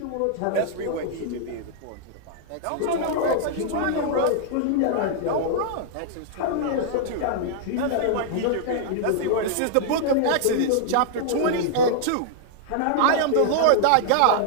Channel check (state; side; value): different; both; correlation -0.01